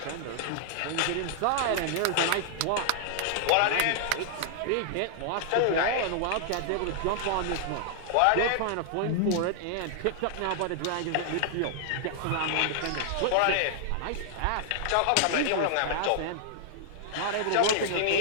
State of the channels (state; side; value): different; both; correlation -0.01